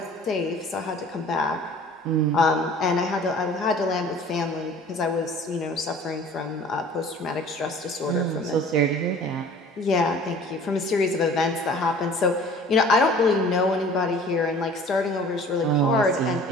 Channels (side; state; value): both; normal; correlation 0.47